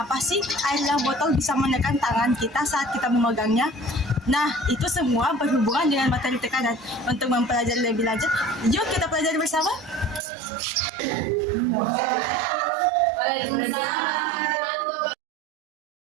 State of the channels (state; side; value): drops out; left; at 10.2 s